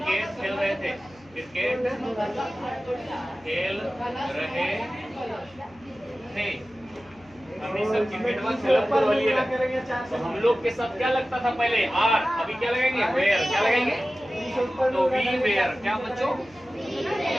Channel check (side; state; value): left; noise; hum, 28 dB below the sound